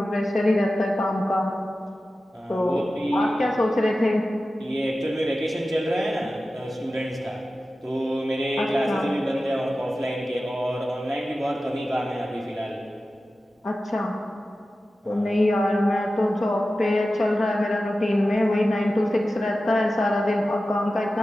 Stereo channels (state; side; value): normal; both; correlation 0.94